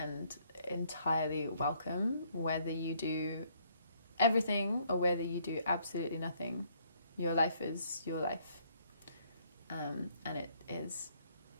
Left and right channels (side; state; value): both; inverted; correlation -0.67